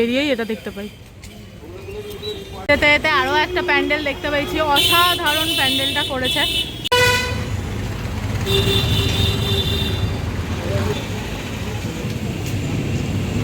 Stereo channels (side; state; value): both; identical; correlation 1.00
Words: এটা দেখতে পাই। এতে এতে আরও একটা প্যান্ডেল দেখতে পেয়েছি, অসাধারণ প্যান্ডেলটা করেছে।